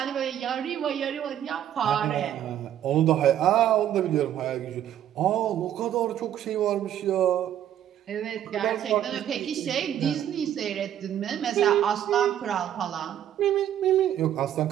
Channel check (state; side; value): quieter; left; 10.8 dB